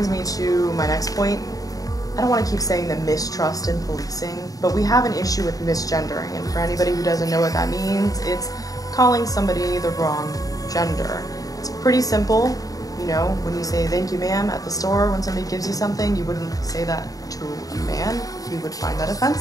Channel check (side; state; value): right; late; 0.17 ms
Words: me to my next point. I don't want to keep saying the mistrust in policing, but we have an issue with misgendering, and for anybody who doesn't know what that means, it's calling somebody the wrong gender. It's pretty simple. You know, when you say thank you ma'am at the store when somebody gives you something, you wouldn't say that to a man. He would find that